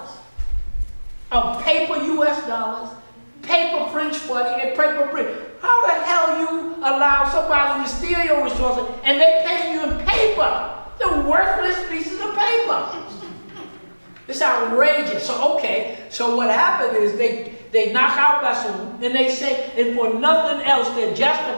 of paper U.S. dollars, paper French money, and paper Brit. How the hell you allow somebody to steal your resources and they pay you in paper? The worthless pieces of paper. It's outrageous. So what happened is they knock out Bassoon and they say, and for nothing else, they're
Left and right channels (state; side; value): inverted; both; correlation -1.00